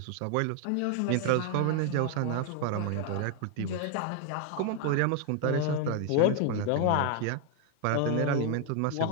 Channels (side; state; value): both; different; correlation 0.00